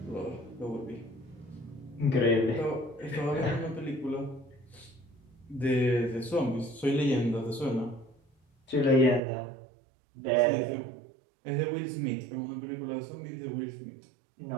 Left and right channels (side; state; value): left; drops out; at 9.2 s